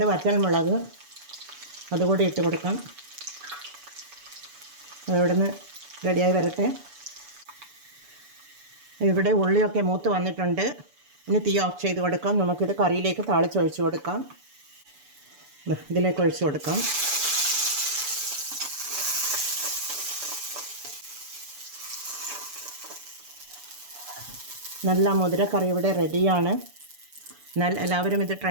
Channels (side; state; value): left; late; 6.9 ms